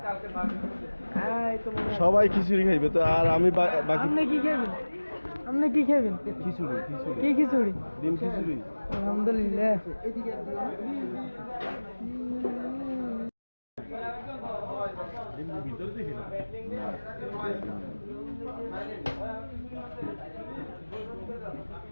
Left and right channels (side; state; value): both; inverted; correlation -1.00